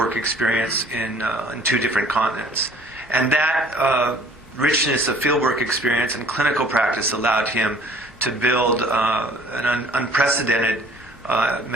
experience in two different continents. And that richness of fieldwork experience and clinical practice allowed him to build an unprecedented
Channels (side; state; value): both; normal; correlation 0.54